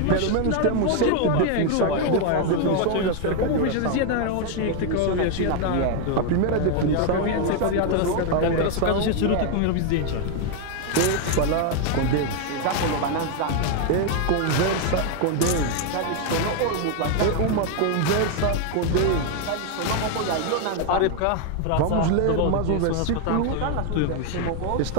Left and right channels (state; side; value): different; both; correlation 0.01